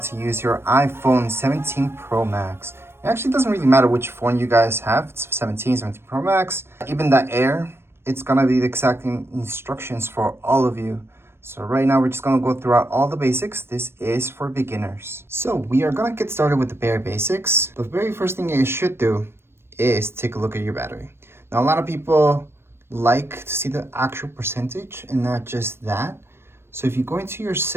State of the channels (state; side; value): late; left; 0.12 ms